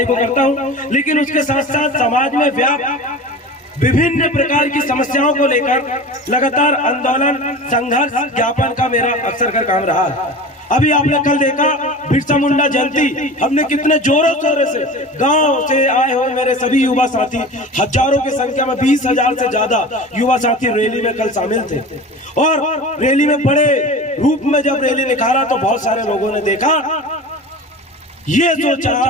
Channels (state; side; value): normal; both; correlation 0.34